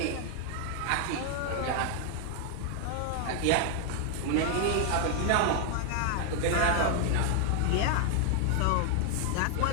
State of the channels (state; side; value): different; both; correlation 0.00